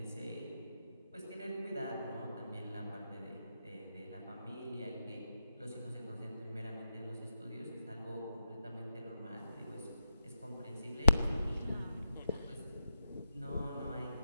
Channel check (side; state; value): both; inverted; correlation -0.87